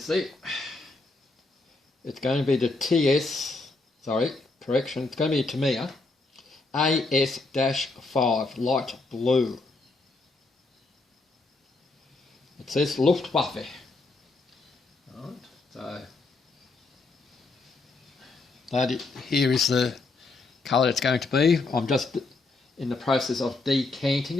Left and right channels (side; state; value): right; quieter; 3.6 dB